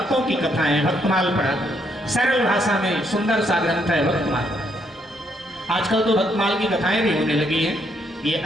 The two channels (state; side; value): normal; both; correlation 0.74